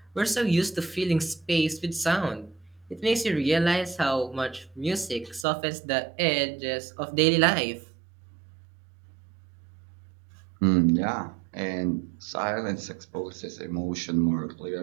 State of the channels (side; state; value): left; drops out; at 5.5 s